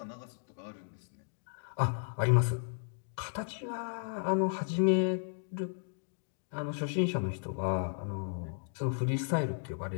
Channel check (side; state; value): right; silent; digital silence